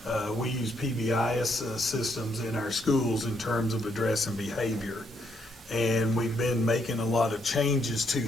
We use PBIS systems in our schools in terms of addressing behavior. And we've been making a lot of changes to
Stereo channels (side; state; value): both; normal; correlation 0.74